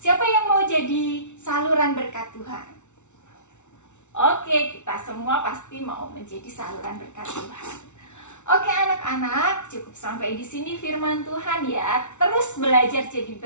saluran berkat Tuhan. Oke, kita semua pasti mau menjadi saluran berkat Tuhan. Oke anak-anak, cukup sampai di sini firman Tuhan ya. Terus belajar jadi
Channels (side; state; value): right; late; 0.83 ms